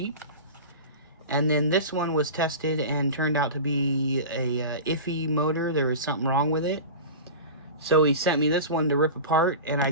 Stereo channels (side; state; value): both; inverted; correlation -0.31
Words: And then this one was tested and turned out to be a iffy motor. There was something wrong with it. So he sent me this one to rip apart, and I